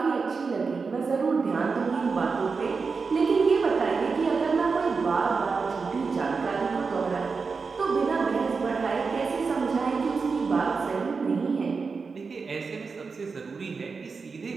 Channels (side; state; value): left; quieter; 4.8 dB